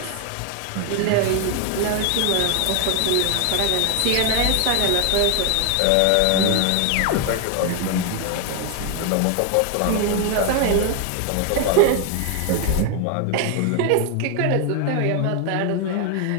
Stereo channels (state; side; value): different; both; correlation 0.01